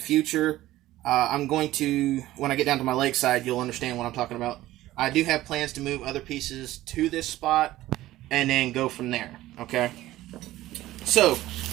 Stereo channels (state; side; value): quieter; left; 15.7 dB